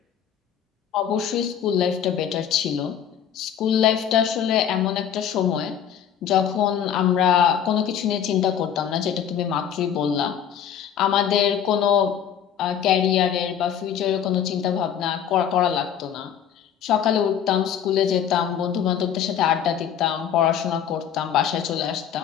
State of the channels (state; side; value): quieter; right; 8.9 dB